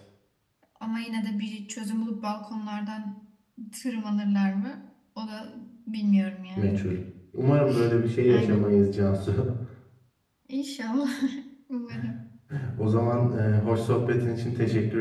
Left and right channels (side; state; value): both; identical; correlation 1.00